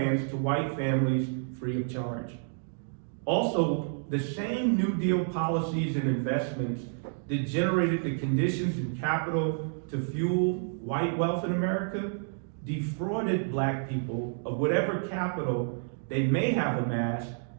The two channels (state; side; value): silent; left; digital silence